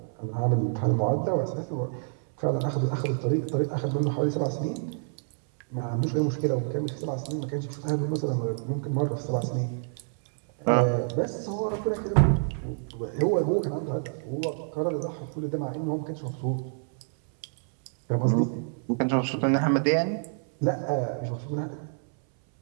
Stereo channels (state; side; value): silent; left; 60 dB below the other